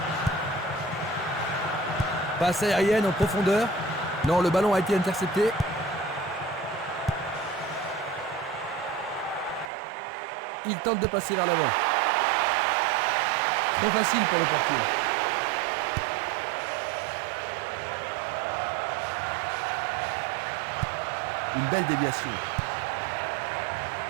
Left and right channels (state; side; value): drops out; left; at 9.7 s